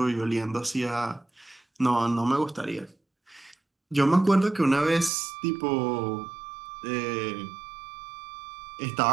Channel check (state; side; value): drops out; left; at 5.1 s